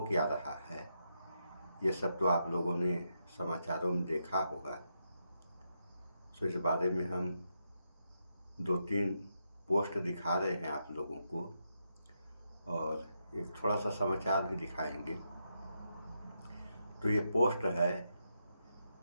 क्या रहा है ये सब तो आप लोगों ने समाचारों में देखा होगा। सो इस बारे में हम 2-3 पोस्ट दिखा रहे हैं आप लोगों को और एक थोड़ा सा समाचार भी दिखाएंगे। तो ये पोस्ट है,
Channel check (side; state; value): both; inverted; correlation -0.82